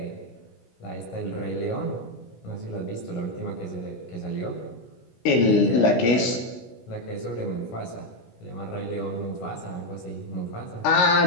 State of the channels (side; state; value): right; late; 17 ms